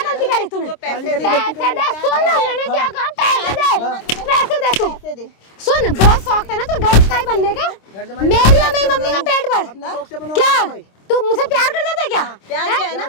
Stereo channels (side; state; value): right; late; 26 ms